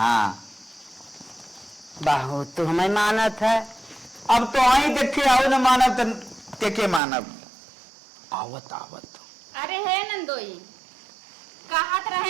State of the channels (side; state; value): left; drops out; at 7.0 s